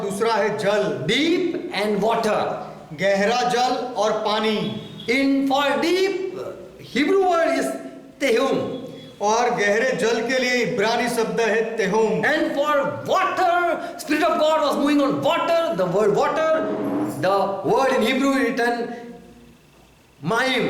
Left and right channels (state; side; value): identical; both; correlation 1.00